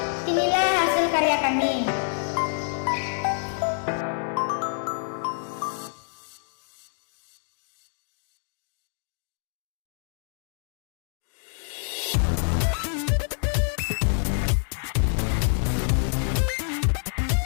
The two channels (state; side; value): silent; right; digital silence